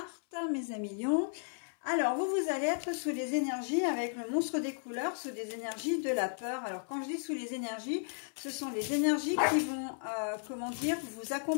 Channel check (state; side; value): silent; right; 55 dB below the other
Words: mes amis lions. Alors, vous allez être sous les énergies avec le monstre des couleurs, sous des énergies de la peur. Alors, quand je dis sous les énergies, ce sont les énergies qui vont, comment dire, vous